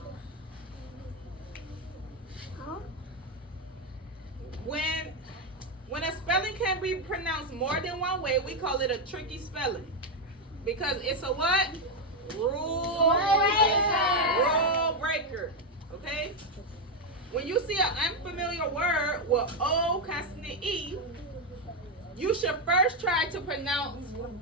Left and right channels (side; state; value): both; normal; correlation 0.05